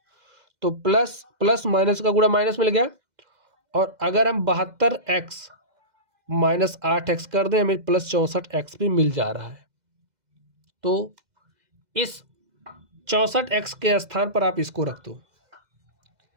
तो प्लस प्लस माइनस का गुणा माइनस मिल गया। और अगर हम 72x -8x कर दें, हमें प्लस 64x भी मिल जा रहा है। तो इस 64x के स्थान पर आप इसको रख दो,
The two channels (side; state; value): left; late; 2.0 ms